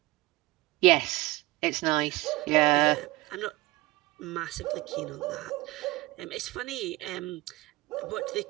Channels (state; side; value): quieter; left; 20.1 dB